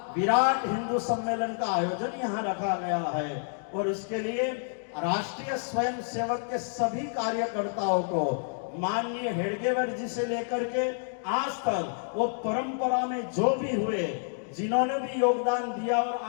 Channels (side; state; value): right; silent; digital silence